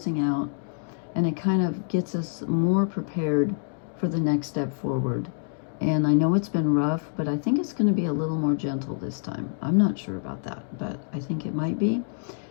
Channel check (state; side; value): silent; right; digital silence